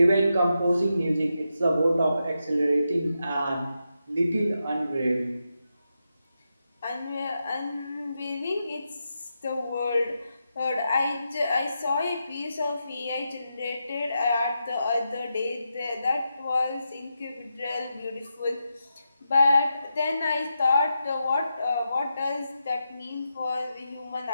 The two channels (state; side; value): inverted; both; correlation -0.87